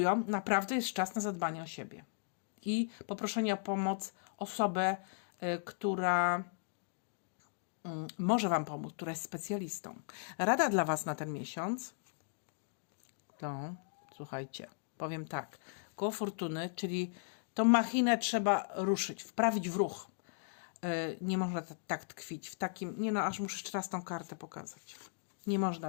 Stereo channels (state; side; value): silent; right; digital silence